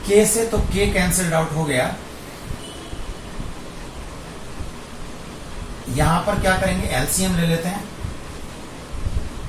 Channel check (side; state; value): both; identical; correlation 1.00